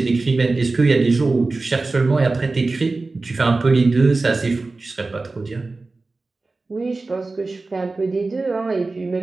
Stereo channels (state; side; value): quieter; left; 3.5 dB